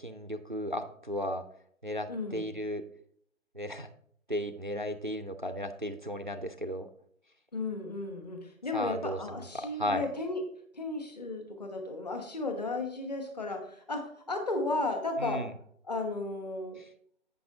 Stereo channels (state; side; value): normal; both; correlation 0.33